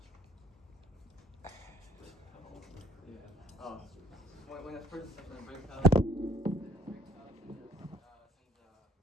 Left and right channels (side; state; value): both; normal; correlation 0.61